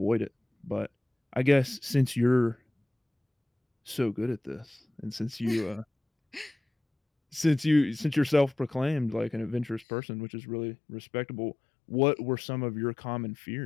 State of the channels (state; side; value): drops out; right; at 9.9 s